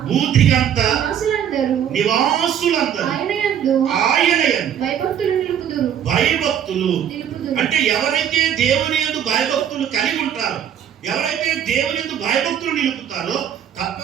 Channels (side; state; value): left; quieter; 9.2 dB